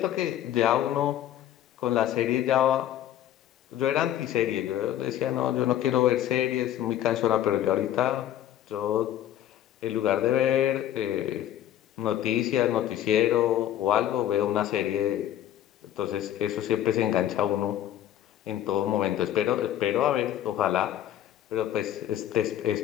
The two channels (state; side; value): quieter; right; 11.8 dB